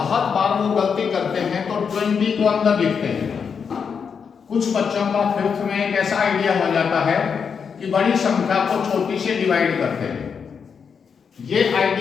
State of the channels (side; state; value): right; quieter; 6.4 dB